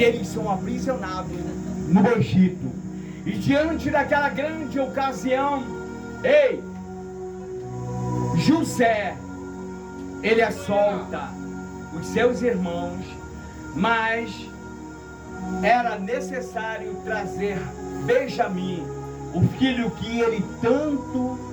eles são aprisionados no Egito. E diante daquela grande ocasião, José, ele solta os seus irmãos, mas era necessário trazer Benjamim, o filho que ele tanto,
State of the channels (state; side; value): identical; both; correlation 1.00